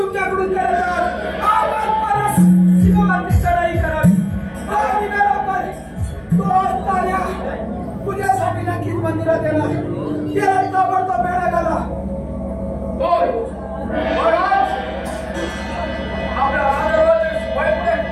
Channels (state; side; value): identical; both; correlation 1.00